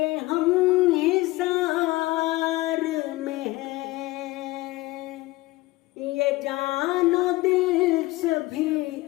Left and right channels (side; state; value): right; quieter; 19.7 dB